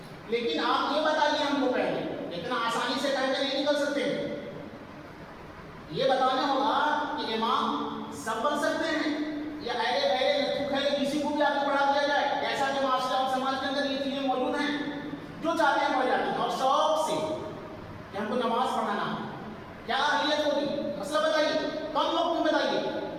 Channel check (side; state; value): both; identical; correlation 1.00